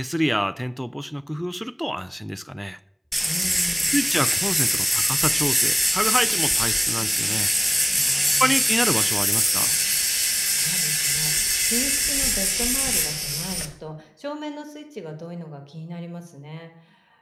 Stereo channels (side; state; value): both; identical; correlation 1.00